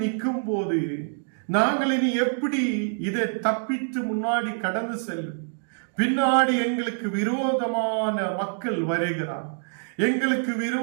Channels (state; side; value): silent; left; digital silence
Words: நிற்கும் போது நாங்கள் இனி எப்படி இதை தப்பித்து முன்னாடி கடந்து செல்லும்? பின்னாடி எங்களுக்கு விரோதமான மக்கள் வருகிறார். எங்களுக்கு